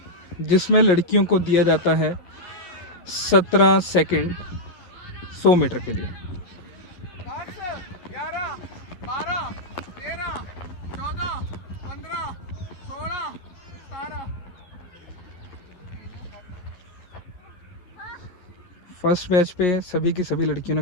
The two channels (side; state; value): right; late; 11 ms